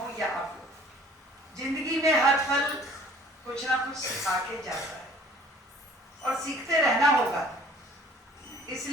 या आप लोग। जिंदगी में हर पल कुछ ना कुछ सिखा के जाता है और सीखते रहना होगा।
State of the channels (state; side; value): normal; both; correlation 0.52